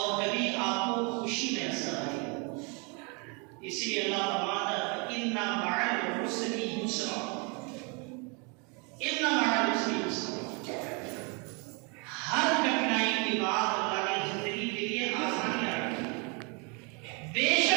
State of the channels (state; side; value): quieter; left; 32.7 dB